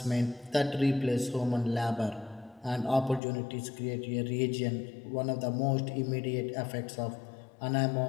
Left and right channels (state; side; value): drops out; right; at 3.2 s